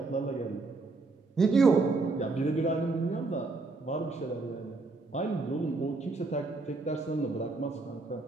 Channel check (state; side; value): quieter; left; 3.6 dB